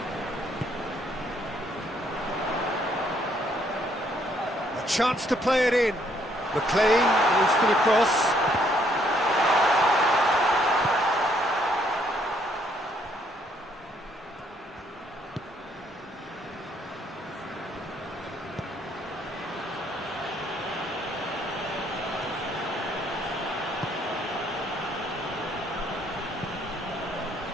Chance to play it in. McLean goes for the cross.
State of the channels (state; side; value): normal; both; correlation 0.68